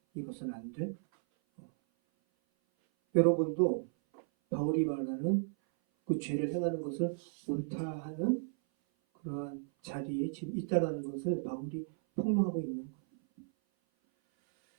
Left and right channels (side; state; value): left; silent; 55 dB below the other